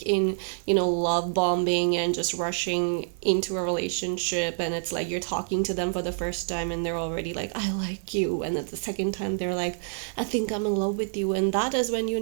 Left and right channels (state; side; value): silent; left; 59 dB below the other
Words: in, love bombing and just rushing into a relationship, and it's like you're talking to them for the first time and they're already like, I like you, and at the second time they're like, I think I'm in love with you, and that is when you